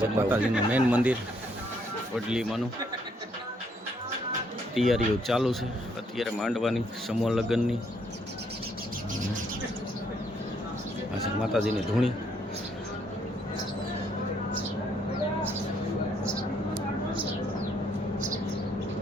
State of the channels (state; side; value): normal; both; correlation 0.70